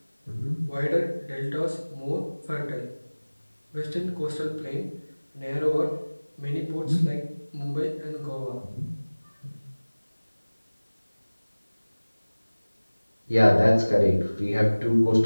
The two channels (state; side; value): inverted; both; correlation -1.00